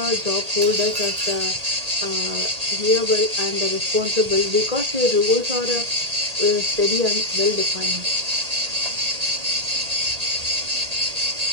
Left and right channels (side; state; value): left; late; 1.8 ms